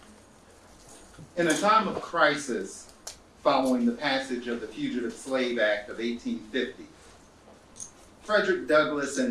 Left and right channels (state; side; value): identical; both; correlation 1.00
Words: In a time of crisis following the passage of the Fugitive Slave Act of 1850, Frederick Douglass